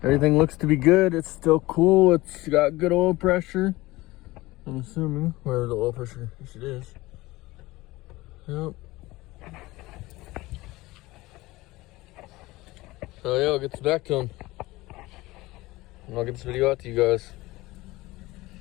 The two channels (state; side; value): quieter; right; 19.7 dB